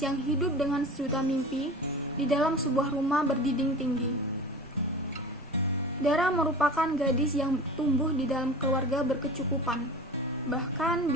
yang hidup dengan sejuta mimpi di dalam sebuah rumah berdinding tinggi. Dara merupakan gadis yang tumbuh di dalam keluarga berkecukupan, bahkan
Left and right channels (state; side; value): normal; both; correlation 0.36